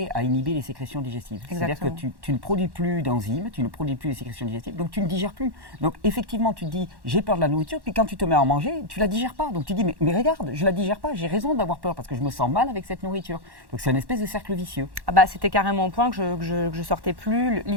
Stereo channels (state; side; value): late; left; 1.1 ms